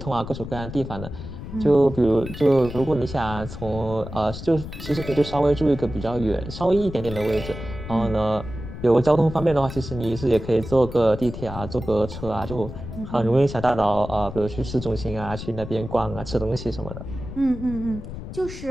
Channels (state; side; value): noise; left; rumble, 10 dB below the sound